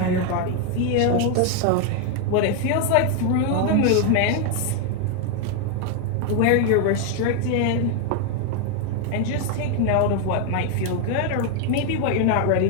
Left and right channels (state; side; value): different; both; correlation 0.01